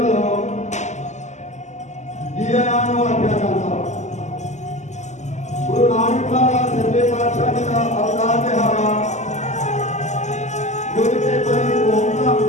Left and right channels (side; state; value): right; late; 0.34 ms